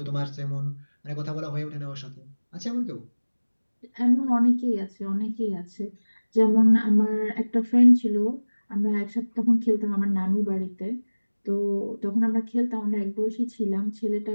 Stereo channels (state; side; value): inverted; both; correlation -1.00